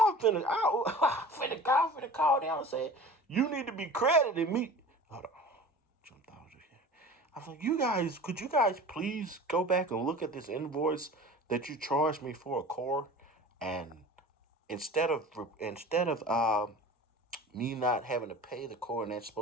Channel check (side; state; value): both; normal; correlation 0.40